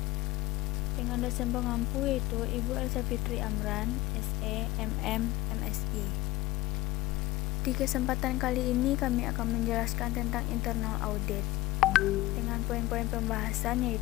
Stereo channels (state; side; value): quieter; right; 17.9 dB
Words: Dengan dosen pengampu yaitu Ibu Elsa Fitri Amran, SE, MM, MSI. Di kesempatan kali ini kami akan menjelaskan tentang internal audit dengan poin-poin pembahasan